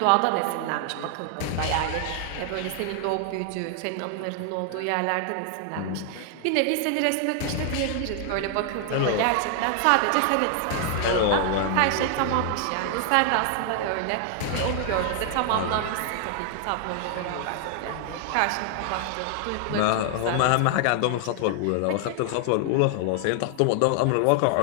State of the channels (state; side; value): different; both; correlation 0.00